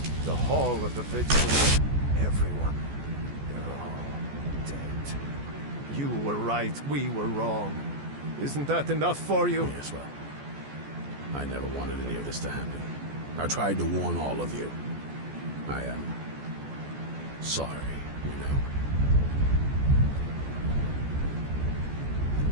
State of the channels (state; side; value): late; left; 14 ms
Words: The Hall of the Vigilance, everyone, they're all dead. You were right, we were wrong. Isn't that enough for you? Yes, well, I never wanted any of this to happen. I tried to warn all of you. I am sorry, you know.